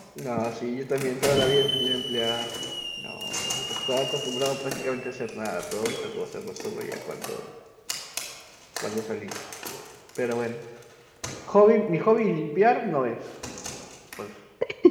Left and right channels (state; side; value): identical; both; correlation 1.00